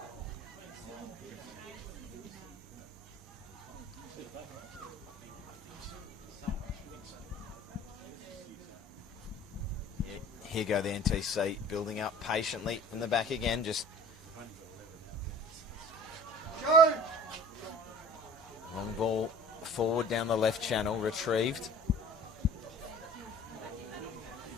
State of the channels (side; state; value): both; normal; correlation 0.46